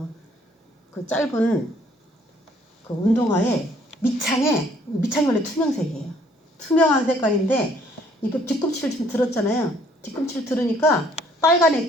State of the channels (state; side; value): normal; both; correlation 0.62